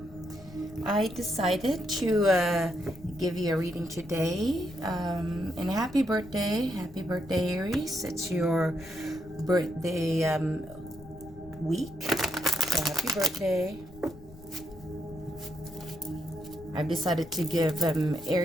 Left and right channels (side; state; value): left; noise; rumble, 20 dB below the sound